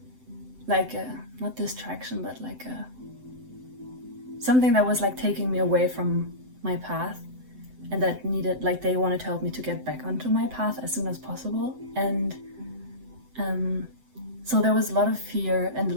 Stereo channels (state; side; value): late; left; 7.8 ms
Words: like not distraction, but like something that was like taking me away from my path, and that needed, like, they wanted to help me to get back onto my path as soon as possible. And so there was a lot of fear and